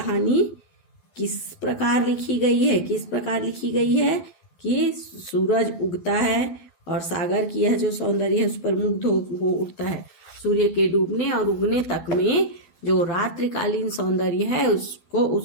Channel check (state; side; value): late; right; 12 ms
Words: किस प्रकार लिखी गई है? किस प्रकार लिखी गई है कि सूरज उगता है और सागर की यह जो सौंदर्य है उस पर मुग्ध हो उठता है। सूर्य के डूबने और उगने तक में जो रात्रिकालीन सौंदर्य है